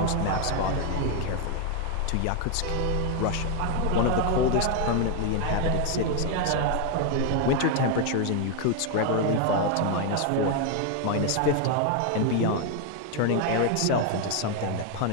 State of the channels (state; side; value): different; both; correlation 0.01